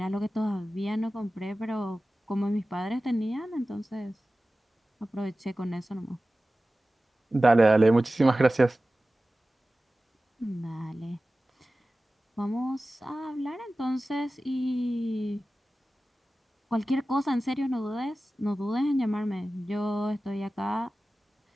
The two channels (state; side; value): normal; both; correlation 0.96